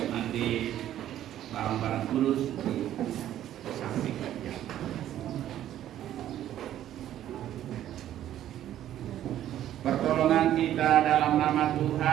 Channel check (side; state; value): left; quieter; 11.9 dB